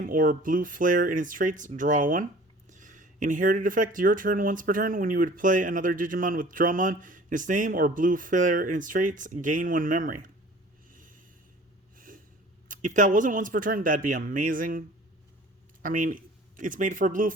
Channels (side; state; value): both; normal; correlation 0.47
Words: or Blue Flare in its traits, draw 1. Inherited effect, your turn, once per turn. When you would play another Digimon with Drummon in its name or Blue Flare in its traits, gain 1 memory. If that wasn't once per turn, that'd be amazing. I mean, it's made for a Blue